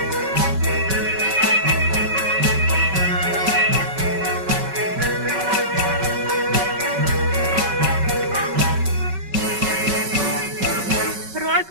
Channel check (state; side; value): late; left; 5.3 ms